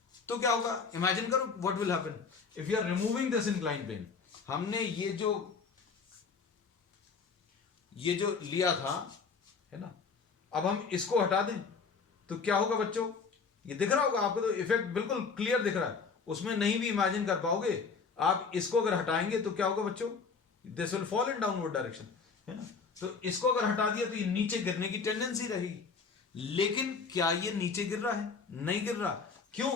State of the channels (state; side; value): quieter; right; 5.1 dB